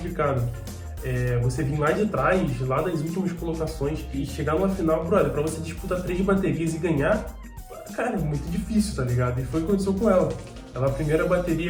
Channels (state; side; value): identical; both; correlation 1.00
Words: Você vir lá de trás, lá das últimas colocações, e chegar numa final, brother, pra você disputar 3 baterias e ganhar, cara, é muito difícil, tá ligado? E foi o que aconteceu com ela. Ela, a primeira